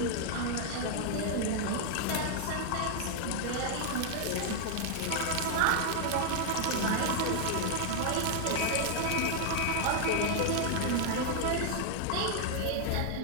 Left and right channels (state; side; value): different; both; correlation 0.00